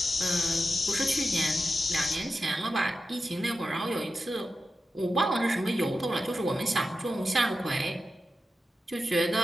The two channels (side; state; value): both; normal; correlation 0.91